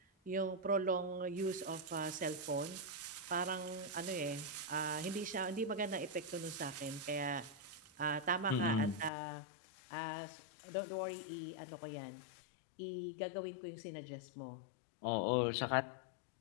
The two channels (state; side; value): drops out; right; at 9.1 s